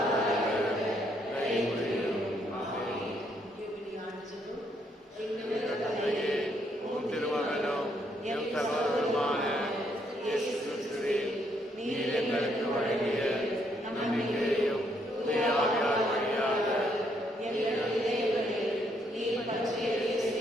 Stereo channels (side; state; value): both; normal; correlation 0.72